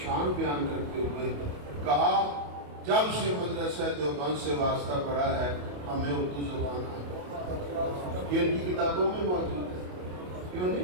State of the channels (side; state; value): left; late; 28 ms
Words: بیان کرتے ہوئے کہا جب سے مدرسہ دیوبند سے واسطہ پڑا ہے ہمیں اردو زبان آتا، یہ ان کی کتابوں میں موجود ہے، کیوں